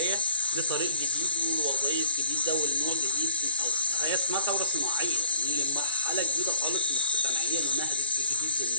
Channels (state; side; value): inverted; both; correlation -0.52